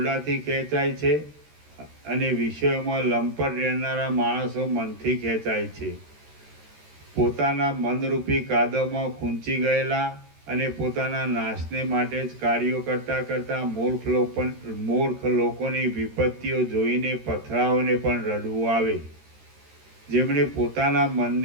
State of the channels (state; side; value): late; left; 13 ms